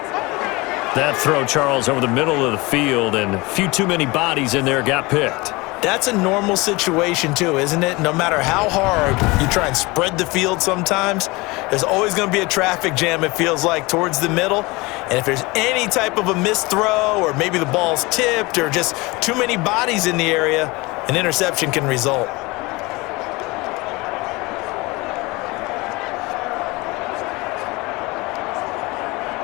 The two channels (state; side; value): quieter; right; 23.8 dB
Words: That throw, Charles, over the middle of the field, and a few too many bodies in there got picked. That's a normal situation too, isn't it? No matter how hard you try and spread the field sometimes, there's always going to be a traffic jam, it feels like, towards the middle. And if there's any type of a missed throw or maybe the ball's tipped or just too many bodies in the area, an interception can result.